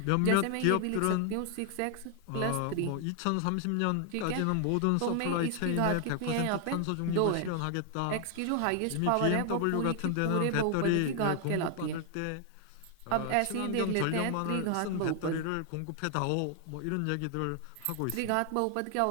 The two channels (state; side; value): different; both; correlation 0.00